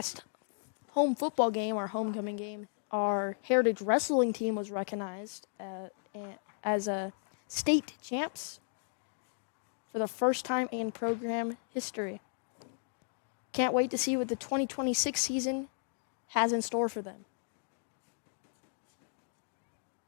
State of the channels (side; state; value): right; silent; digital silence